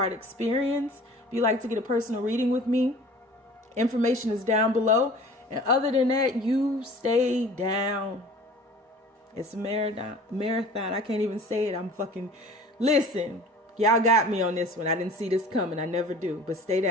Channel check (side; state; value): both; normal; correlation 0.45